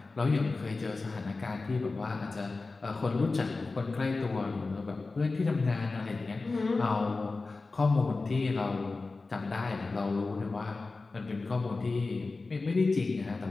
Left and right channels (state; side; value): quieter; right; 3.7 dB